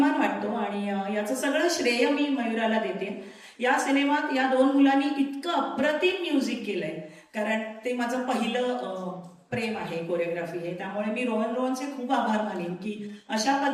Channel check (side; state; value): both; identical; correlation 1.00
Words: वाटतो. आणि याचं सगळं श्रेय मी मयुराला देते. या सिनेमात या 2 मुलांनी इतकं अप्रतिम म्युझिक केलंय, कारण ते माझं पहिलं प्रेम आहे, कोरिओग्राफी आहे. त्यामुळे मी रोहनचे खूप आभार मानेन की अशा